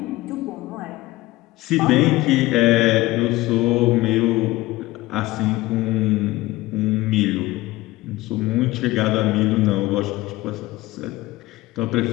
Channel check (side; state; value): right; quieter; 18.6 dB